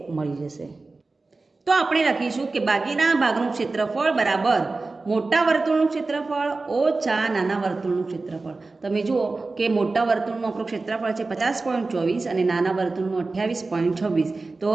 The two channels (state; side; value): quieter; left; 3.6 dB